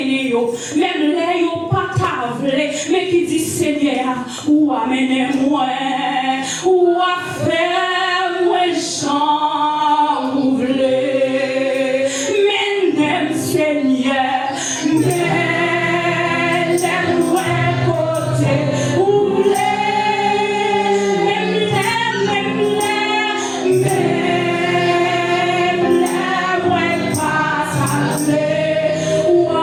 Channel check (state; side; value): identical; both; correlation 1.00